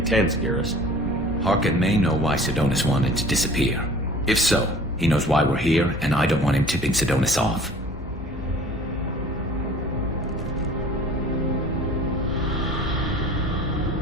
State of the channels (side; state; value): both; normal; correlation 0.46